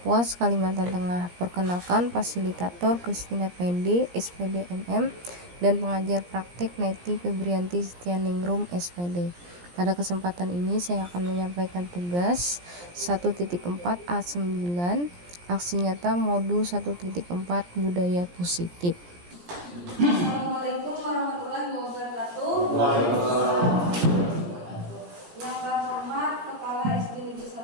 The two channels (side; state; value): left; late; 17 ms